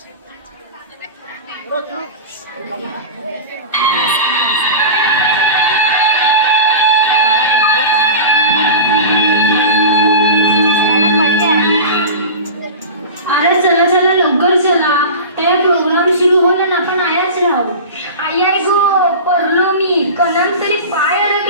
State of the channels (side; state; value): both; inverted; correlation -0.30